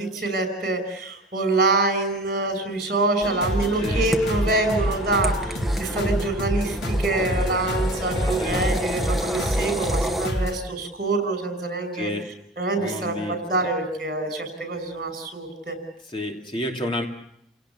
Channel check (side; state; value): both; normal; correlation 0.38